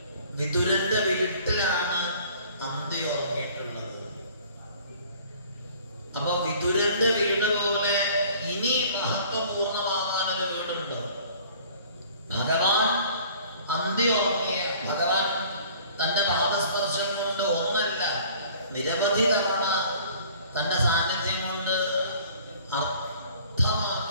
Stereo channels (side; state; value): both; inverted; correlation -0.51